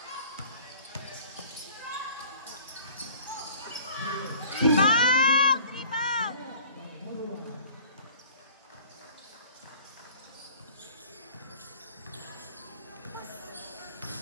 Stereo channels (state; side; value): inverted; both; correlation -0.49